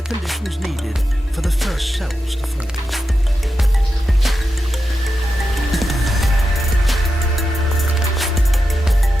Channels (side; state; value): both; normal; correlation 0.89